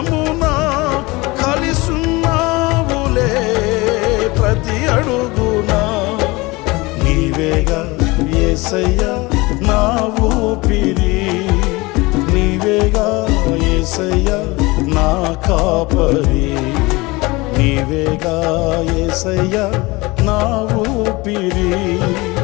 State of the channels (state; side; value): quieter; right; 23.1 dB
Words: కలిసున్నావులే ప్రతి అడుగున. నీవేగా యేసయ్యా నా ఊపిరి, నీవేగా యేసయ్యా నా కాపరి. నీవేగా యేసయ్యా నా ఊపిరి,